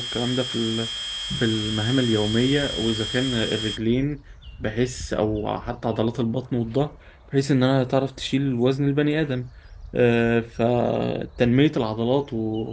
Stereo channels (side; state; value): both; identical; correlation 1.00